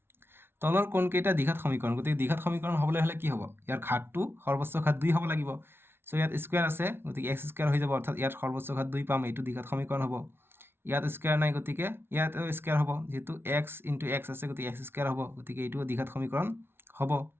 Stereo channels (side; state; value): left; late; 0.11 ms